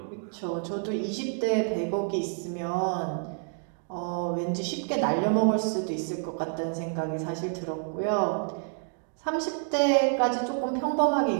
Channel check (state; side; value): silent; left; 56 dB below the other